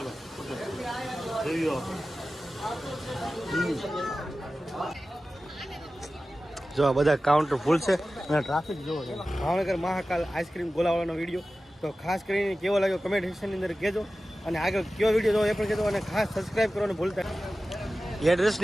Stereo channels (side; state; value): both; normal; correlation 0.95